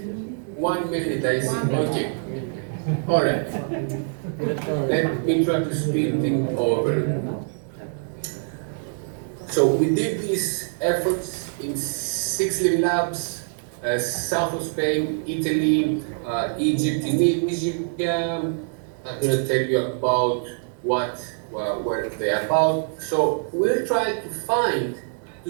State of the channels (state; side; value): silent; left; digital silence